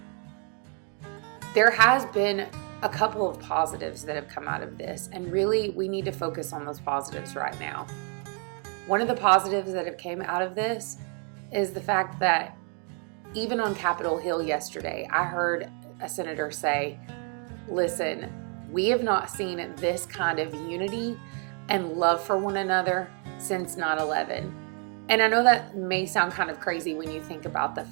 There has been a couple of positives that have come out of this, and really we need to focus on those positives right now. One of the positives that have came out of this is the fact that even on Capitol Hill yesterday, I heard a senator say, listen, we have not seen this kind of unity and love for one another since 9/11. And I know that may sound kind of crazy when you think about the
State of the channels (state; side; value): quieter; left; 38.8 dB